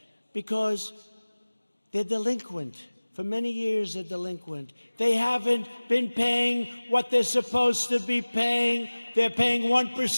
because they're delinquent. For many years, they're delinquent. They haven't been paying what they're supposed to be paying. They're paying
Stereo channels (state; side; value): inverted; both; correlation -1.00